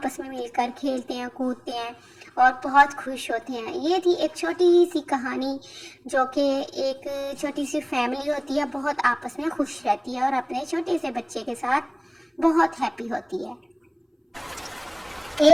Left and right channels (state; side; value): identical; both; correlation 1.00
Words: में मिलकर खेलते हैं, कूदते हैं और बहुत खुश होते हैं। ये थी एक छोटी सी कहानी, जो कि एक छोटी सी फैमिली होती है, बहुत आपस में खुश रहती है और अपने छोटे से बच्चे के साथ बहुत हैप्पी होती है।